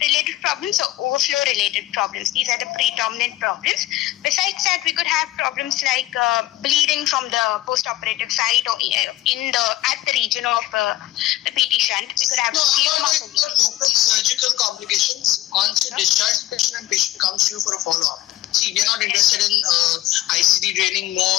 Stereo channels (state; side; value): quieter; right; 15.8 dB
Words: related problems, or overflow related problems. These are the predominant problems. Besides that, we could have problems like bleeding from the post-operative site or at the region of the BT shunt. We could have local surgical complications. Once you discharge the patient and patient comes to you for a follow-up. See, we are not interested in ICD draining